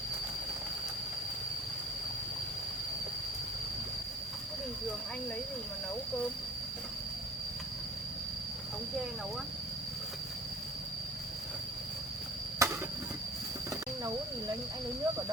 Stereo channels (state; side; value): normal; both; correlation 0.43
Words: Bình thường anh lấy gì mà nấu cơm? Ống tre nấu á? Anh nấu thì anh lấy nước ở